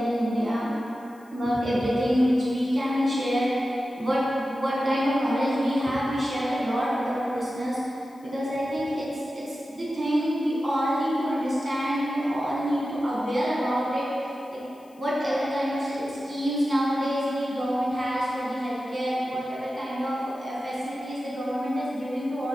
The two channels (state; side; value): noise; left; hiss, 30 dB below the sound